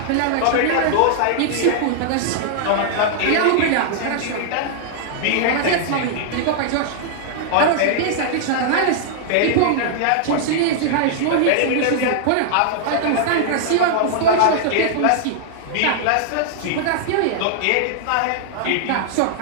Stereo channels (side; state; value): both; different; correlation -0.01